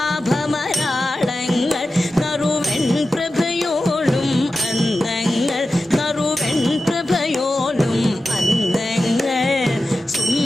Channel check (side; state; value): both; normal; correlation 0.93